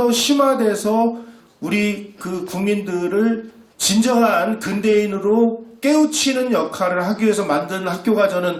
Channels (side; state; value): both; identical; correlation 1.00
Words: 심화돼서 우리 그 국민들을 진정한 근대인으로 깨우치는 역할을 하기 위해서 만든 학교가